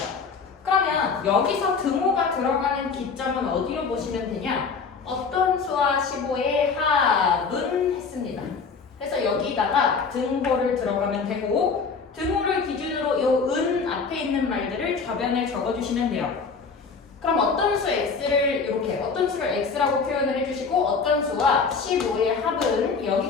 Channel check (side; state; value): right; quieter; 5.1 dB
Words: 그러면 여기서 등호가 들어가는 기점은 어디로 보시면 되냐? 어떤 수와 15의 합은 했습니다. 그래서 여기다가 등호를 들어가면 되고, 등호를 기준으로 요 은 앞에 있는 말들을 좌변에 적어주시면 돼요. 그럼 어떤 수 x를 이렇게 어떤 수를 x라고 표현을 해주시고, 어떤 수와 15의 합은